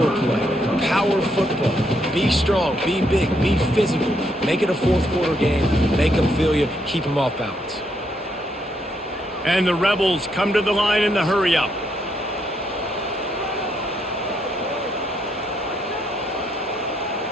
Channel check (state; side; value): normal; both; correlation 0.75